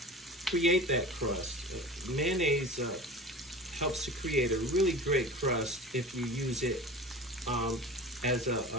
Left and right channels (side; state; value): both; normal; correlation 0.35